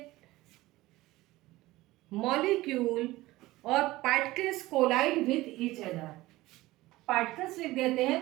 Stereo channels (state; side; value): quieter; left; 18.3 dB